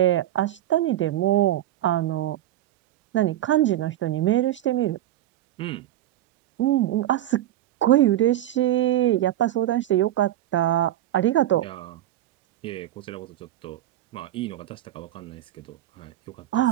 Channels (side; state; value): left; quieter; 13.3 dB